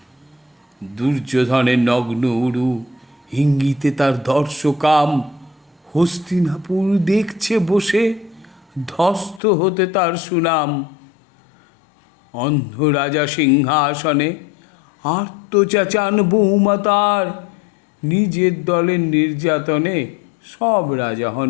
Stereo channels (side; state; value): right; drops out; at 9.4 s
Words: দুর্যোধনের নগ্ন উরু, ইঙ্গিতে তার দর্শকাম। হস্তিনাপুর দেখছে বসে, ধ্বস্ত হতে তার সুনাম। অন্ধ রাজা সিংহাসনে আর্তচাচান বৌমা তার। নিজের দলের নির্যাতনে সব রাজা হন